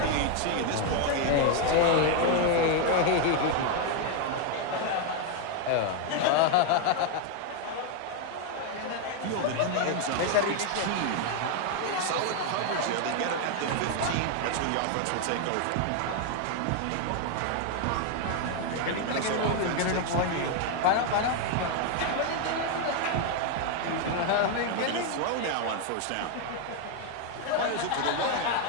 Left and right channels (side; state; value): both; different; correlation 0.01